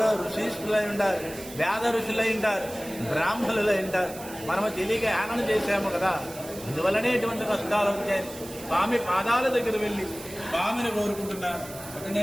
ఋషిష్ఠులై ఉంటారు, వేద ఋషులై ఉంటారు, బ్రాహ్మణులై ఉంటారు, మనము తెలియక యానం చేశాము కదా, అందువల్లనే ఇటువంటి కష్టాలు వచ్చాయి. స్వామి పాదాల దగ్గర వెళ్ళి స్వామిని కోరుకుంటున్నారు. అంటే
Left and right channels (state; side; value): noise; right; hiss, 15 dB below the sound